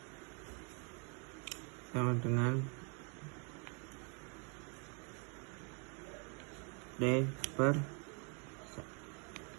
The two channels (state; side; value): quieter; left; 36.3 dB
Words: sama dengan D per